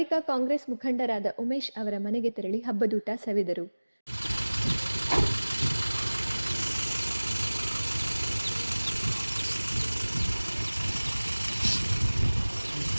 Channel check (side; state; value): both; inverted; correlation -1.00